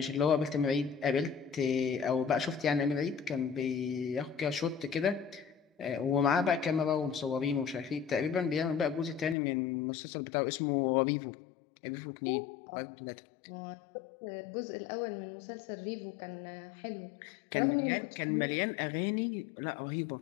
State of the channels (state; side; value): drops out; right; at 9.3 s